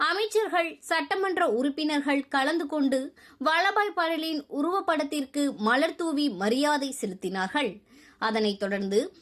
அமைச்சர்கள், சட்டமன்ற உறுப்பினர்கள் கலந்து கொண்டு வல்லபாய் படேலின் உருவப்படத்திற்கு மலர்தூவி மரியாதை செலுத்தினார்கள். அதனைத் தொடர்ந்து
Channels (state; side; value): identical; both; correlation 1.00